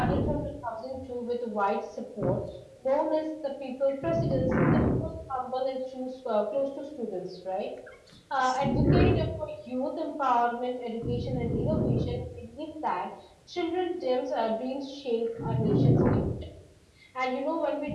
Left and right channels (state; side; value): identical; both; correlation 1.00